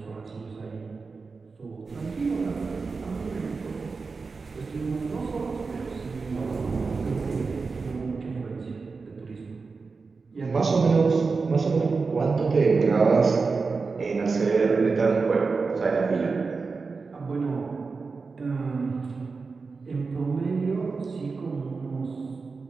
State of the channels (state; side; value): quieter; left; 4.5 dB